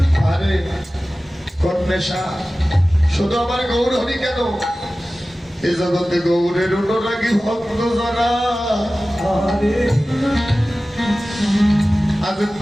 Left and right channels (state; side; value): normal; both; correlation 0.96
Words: আরে কোন নেশা? শুধু আমার গৌর হরি কেন, এ জগতে গৌরের অনুরাগী ভক্ত যারা আরে আজ